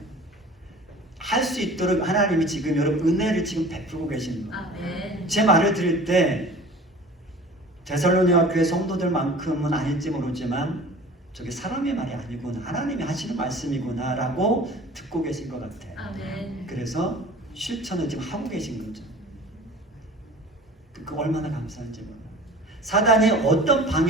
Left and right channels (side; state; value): both; normal; correlation 0.43